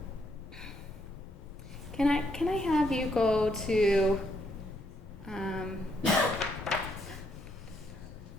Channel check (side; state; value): both; normal; correlation 0.74